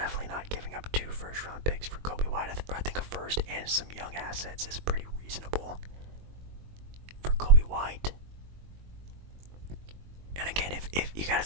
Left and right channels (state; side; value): late; left; 22 ms